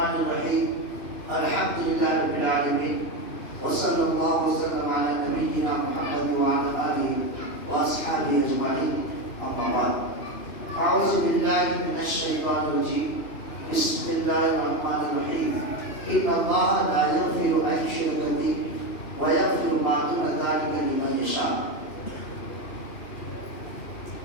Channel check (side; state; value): right; late; 2.9 ms